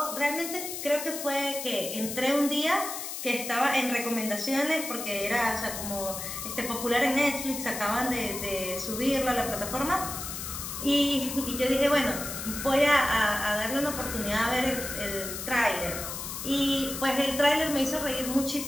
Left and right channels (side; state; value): left; noise; hiss, 6 dB below the sound